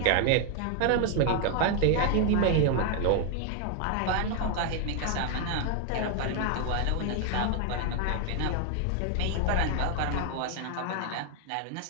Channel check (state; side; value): different; both; correlation 0.00